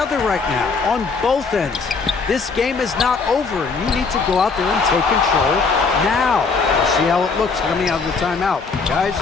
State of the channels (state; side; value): quieter; right; 4.7 dB